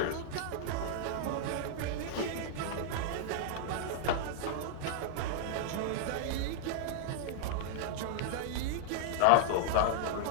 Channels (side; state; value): both; different; correlation -0.01